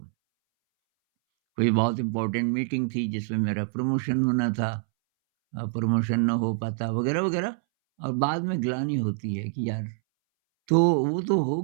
कोई बहुत इम्पोर्टेंट मीटिंग थी जिसमें मेरा प्रमोशन होना था, प्रमोशन ना हो पाता वगैरह-वगैरह, और बाद में ग्लानि होती है कि यार, तो वो तो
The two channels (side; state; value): left; silent; 61 dB below the other